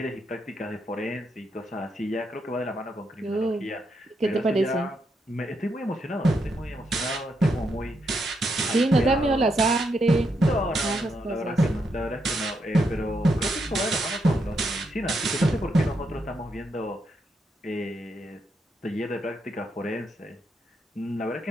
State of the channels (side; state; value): both; normal; correlation 0.80